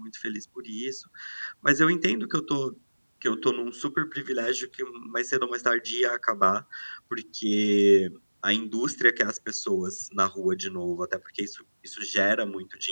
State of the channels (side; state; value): both; inverted; correlation -1.00